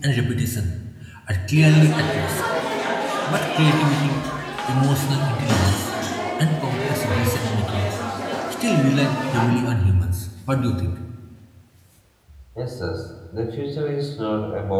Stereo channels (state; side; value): identical; both; correlation 1.00